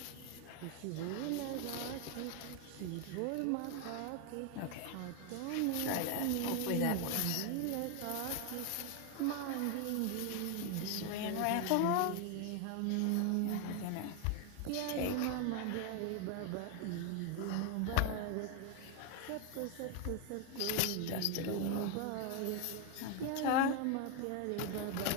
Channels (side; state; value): both; different; correlation 0.01